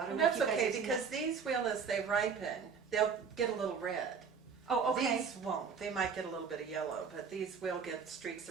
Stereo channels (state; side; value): quieter; left; 6.0 dB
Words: don't know if That's you guys okay, have seen because that. these will, as they ripen, they'll get a little red. Oh, okay. These won't. They might get a little bit of yellow, but these will get streaks